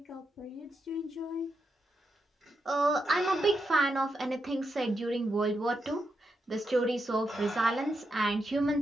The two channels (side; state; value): both; normal; correlation 0.84